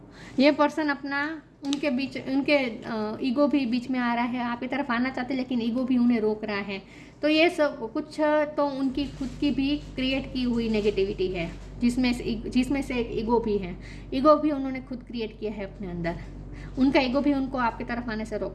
ये पर्सन अपना उनके ईगो भी बीच में आ रहा है, आपकी तरफ आना चाहते लेकिन ईगो भी उन्हें रोक रहा है। तो ये सब कुछ तो उनकी खुद की भी क्रिएट की हुई नेगेटिविटी है, जिसमें से एक ईगो भी है। ईगो भी उन्होंने खुद क्रिएट किया है अपने अंदर, उनका ईगो भी उनको आपकी तरफ आने से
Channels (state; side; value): identical; both; correlation 1.00